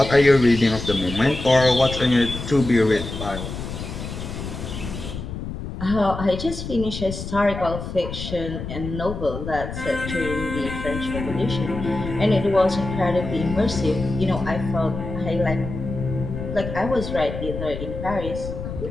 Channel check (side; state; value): left; noise; rumble, 7 dB below the sound